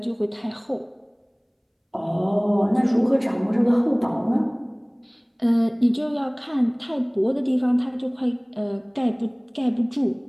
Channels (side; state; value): both; identical; correlation 1.00